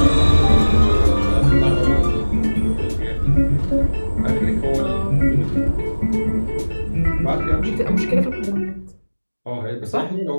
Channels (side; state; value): both; inverted; correlation -1.00